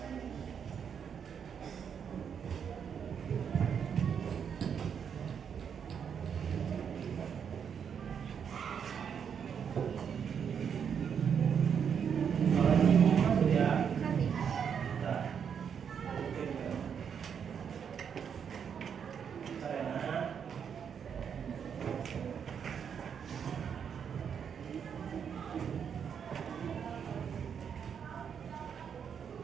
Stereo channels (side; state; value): left; quieter; 7.4 dB